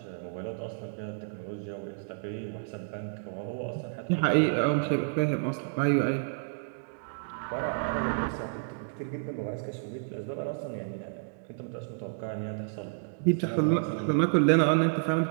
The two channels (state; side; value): silent; left; digital silence